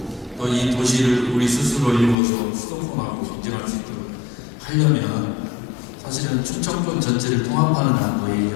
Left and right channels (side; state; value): right; drops out; at 2.1 s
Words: 또 이 도시를 우리 스스로 이루어서 수도권하고 경쟁할 수 있도록 하려면 사실은 충청권 전체를 통합하는 안도